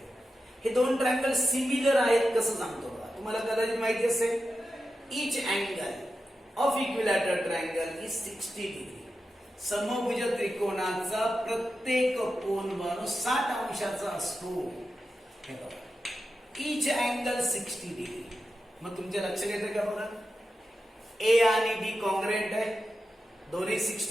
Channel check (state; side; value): normal; both; correlation 0.91